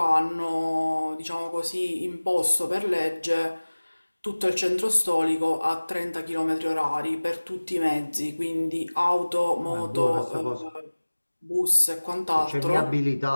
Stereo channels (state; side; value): inverted; both; correlation -1.00